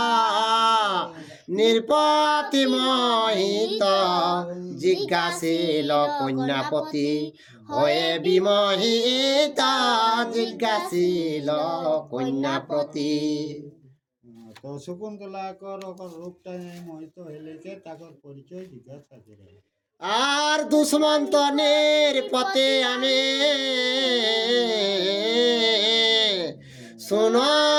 নির্পতি মোহিত জিজ্ঞাসিল কন্যাপতি হয়ে বিমোহিত জিজ্ঞাসিল কন্যাপতি। তো শকুন্তলা কর রূপটা মোহিত হইলে কে তাকর পরিচয় জিজ্ঞাসা করে। আর দুষ্মন্ত নির্পতি আমি শুন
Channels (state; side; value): identical; both; correlation 1.00